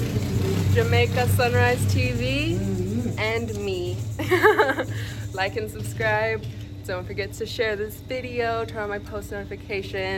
Jamaica Sunrise TV. And me. Like and subscribe. Don't forget to share this video, turn on my post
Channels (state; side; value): identical; both; correlation 1.00